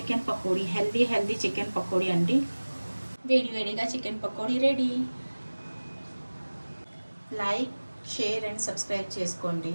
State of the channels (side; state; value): both; inverted; correlation -1.00